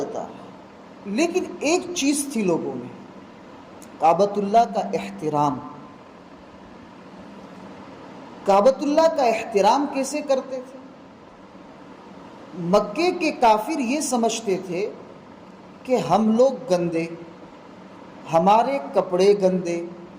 ہے، لیکن ایک چیز تھی لوگوں میں، کعبۃ اللہ کا احترام. کعبۃ اللہ کا احترام کیسے کرتے تھے؟ مکے کے کافر یہ سمجھتے تھے کہ ہم لوگ گندے، ہمارے کپڑے گندے،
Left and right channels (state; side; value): identical; both; correlation 1.00